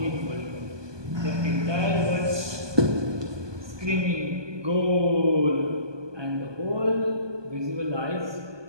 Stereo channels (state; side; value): late; left; 1.2 ms